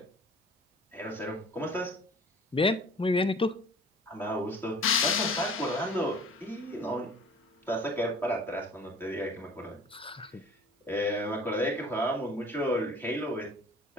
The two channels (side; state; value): both; normal; correlation 0.47